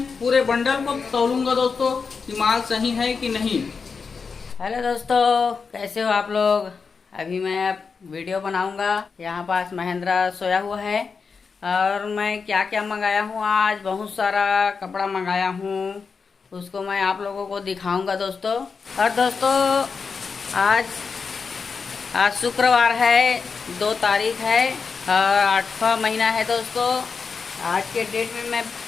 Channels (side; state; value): right; quieter; 5.2 dB